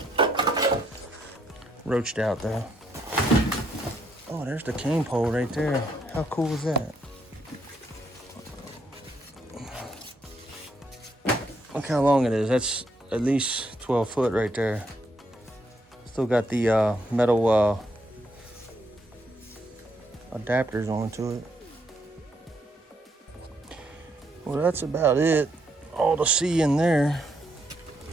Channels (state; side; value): normal; both; correlation 0.74